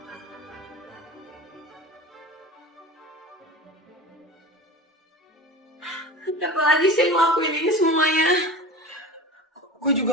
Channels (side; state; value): both; normal; correlation 0.32